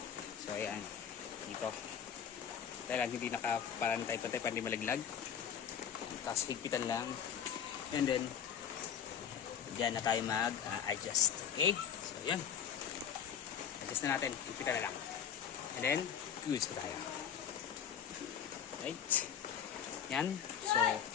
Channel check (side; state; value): right; quieter; 8.3 dB